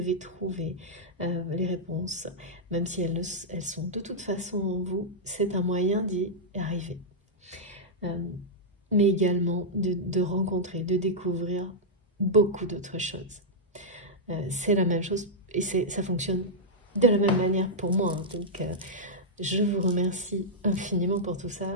trouver les réponses. Même si elles sont de toute façon en vous, c'est un moyen d'y arriver. Mais également de rencontrer, de découvrir beaucoup d'autres choses. C'est la même chose et ça fonctionne de la même manière pour moi. Hein. Donc, je vous remercie infiniment pour tout ça.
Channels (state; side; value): normal; both; correlation -0.09